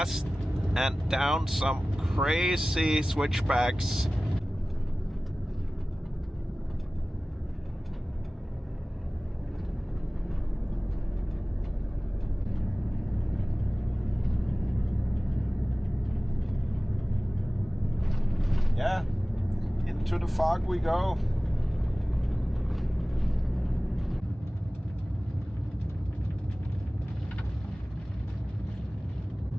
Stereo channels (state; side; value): normal; both; correlation 0.98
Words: and down some crazy switchbacks. Yeah. To the fog we go.